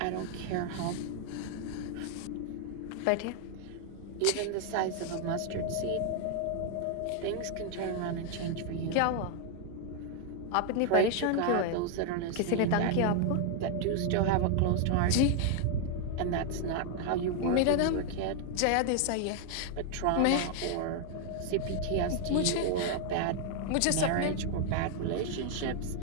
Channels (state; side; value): different; both; correlation 0.00